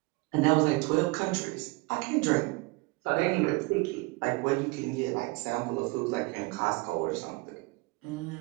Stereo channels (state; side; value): quieter; left; 25.0 dB